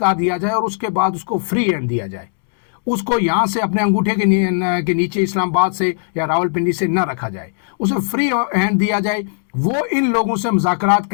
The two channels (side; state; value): right; silent; digital silence